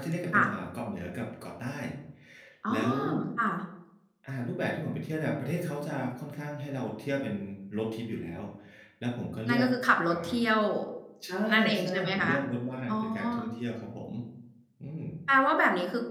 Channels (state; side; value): identical; both; correlation 1.00